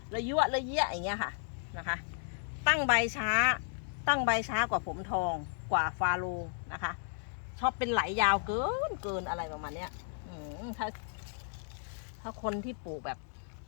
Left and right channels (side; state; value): right; silent; digital silence